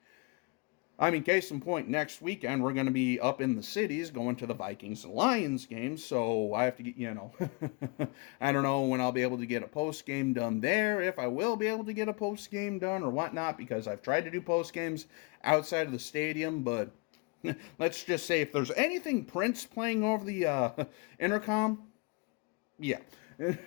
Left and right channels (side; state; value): right; quieter; 29.4 dB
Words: I mean, case in point, next weekend we're going to be up in the cities going to the Vikings and Lions game, so I have to get, I don't know when I'll be able to get a post-game done there, if I will be able to get a post-game done or whatnot, because I've tried to do post-games outside of the stadium, but let's just say if there's anything Prince playing over the intercom, yeah.